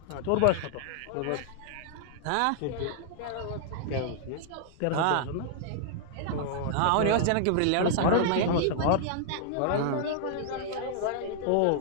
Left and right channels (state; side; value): different; both; correlation -0.01